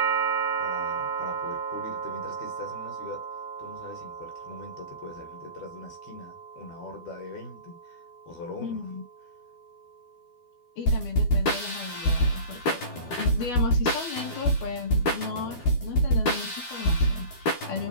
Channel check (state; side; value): late; right; 12 ms